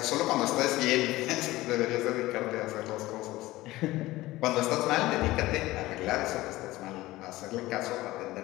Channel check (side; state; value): right; quieter; 18.0 dB